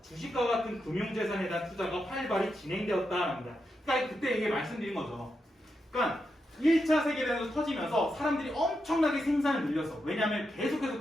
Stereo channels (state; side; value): normal; both; correlation 0.85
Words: 주식과 같은 금융재산에 대한 투자가 활발히 진행되었다는 겁니다. 그러니까 그때 이게 말씀드린 거죠. 그러니까 1차 세계대전이 터지면서 사람들이 엄청나게 생산을 늘렸어. 왜냐하면